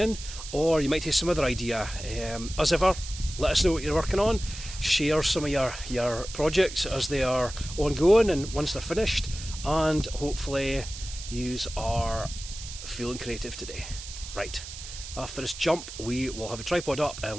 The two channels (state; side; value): noise; right; hiss, 11 dB below the sound